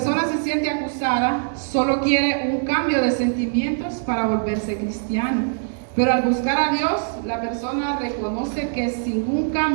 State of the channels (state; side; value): silent; left; 59 dB below the other